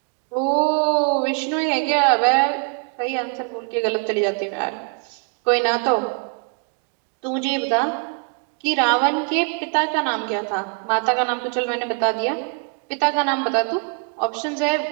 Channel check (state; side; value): quieter; left; 37.8 dB